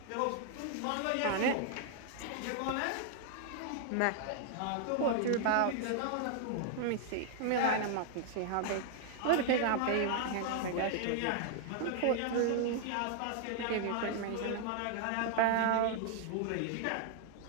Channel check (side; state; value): both; different; correlation 0.00